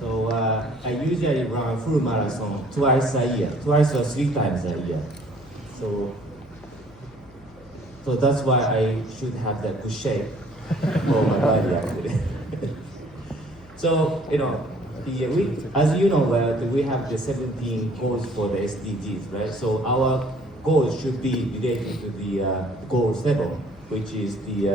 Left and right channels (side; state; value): left; noise; hum, 24 dB below the sound